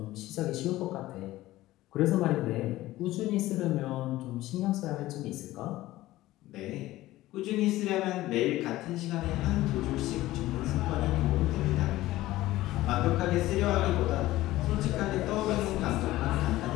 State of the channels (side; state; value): right; quieter; 16.5 dB